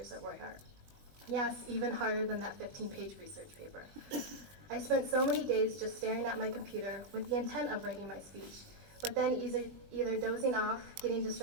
at Roy Hart. Yes, even harder than that 15-page research paper. I spent so many days just staring at my computer with the intent of writing my speech, but then either dozing off, getting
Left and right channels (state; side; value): late; left; 20 ms